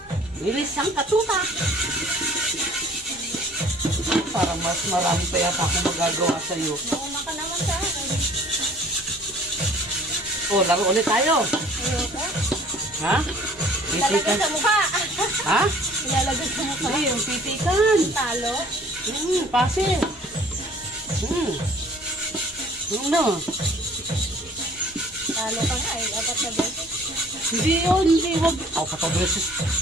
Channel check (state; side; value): normal; both; correlation 0.53